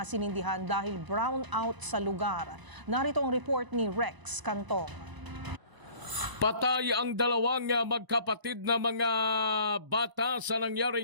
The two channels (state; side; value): late; left; 1.0 ms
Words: sinindihan dahil brown out sa lugar. Narito ang report ni Rex Cantong. Patay ang dalawang magkapatid na mga bata sa